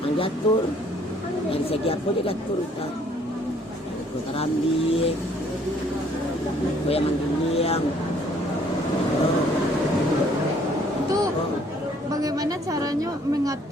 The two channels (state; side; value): normal; both; correlation 0.61